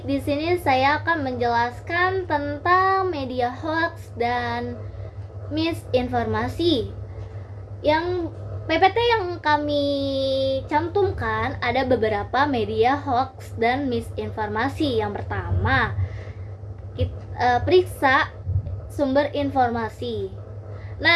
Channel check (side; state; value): both; identical; correlation 1.00